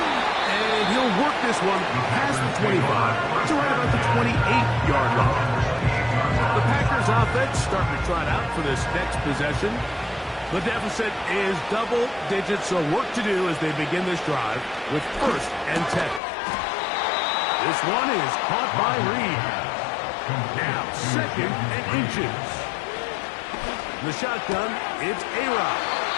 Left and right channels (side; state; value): right; drops out; at 16.2 s